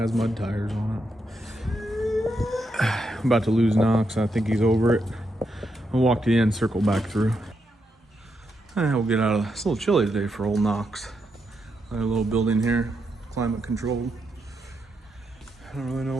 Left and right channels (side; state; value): both; normal; correlation 0.82